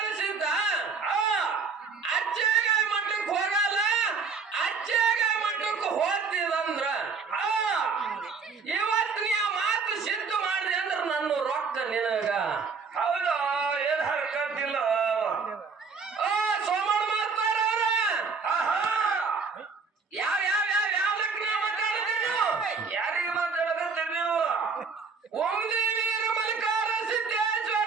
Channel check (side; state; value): left; quieter; 5.1 dB